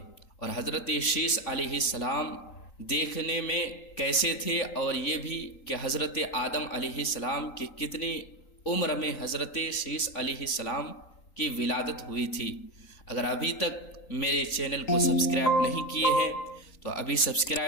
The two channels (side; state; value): right; late; 3.8 ms